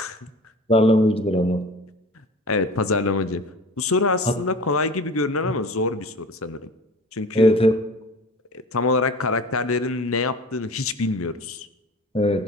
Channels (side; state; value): both; normal; correlation 0.39